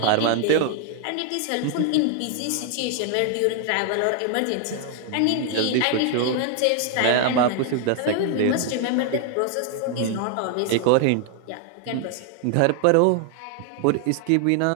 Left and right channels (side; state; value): both; different; correlation 0.00